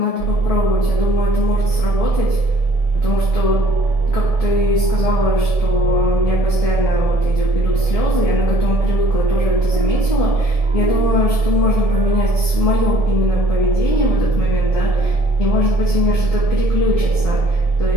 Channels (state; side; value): late; right; 1.7 ms